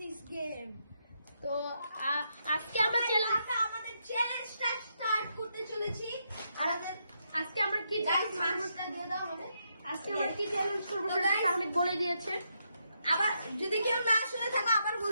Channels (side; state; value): both; inverted; correlation -0.80